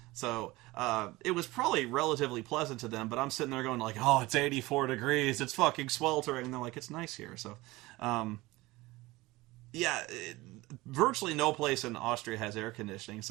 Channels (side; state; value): left; quieter; 20.4 dB